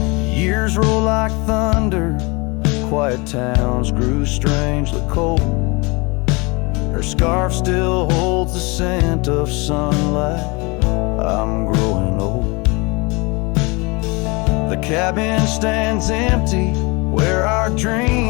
Years roll like thunder, quiet towns grew strangely cold. Her scarf still holds the scent of sunlight. I'm growing old. The cabin stands empty, where our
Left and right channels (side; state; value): right; quieter; 27.4 dB